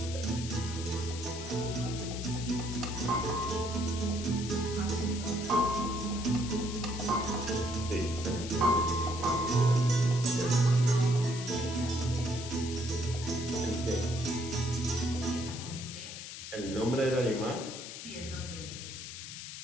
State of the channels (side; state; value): left; noise; hiss, 10 dB below the sound